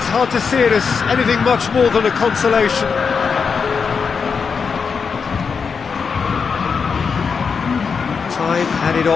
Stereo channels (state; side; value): quieter; right; 5.7 dB